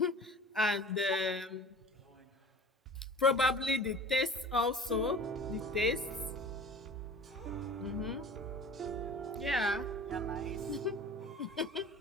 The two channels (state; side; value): normal; both; correlation 0.42